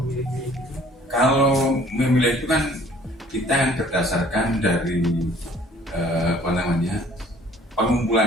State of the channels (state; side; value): normal; both; correlation 0.56